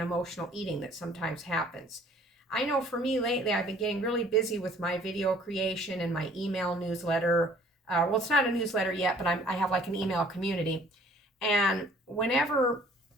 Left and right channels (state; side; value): normal; both; correlation 0.56